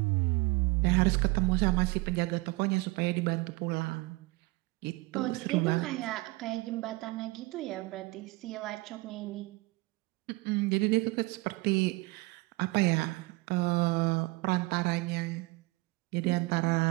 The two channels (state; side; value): quieter; left; 23.4 dB